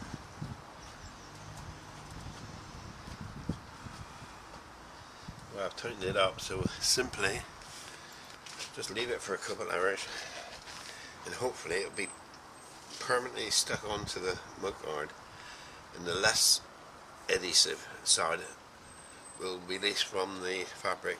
Well, I've tightened it up, so simply just leave it for a couple hours and hopefully it'll be permanently stuck onto the mudguard, and the less adhesive side will release from the fabric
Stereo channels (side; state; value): both; identical; correlation 1.00